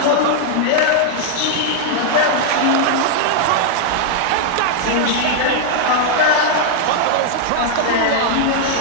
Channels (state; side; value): different; both; correlation 0.00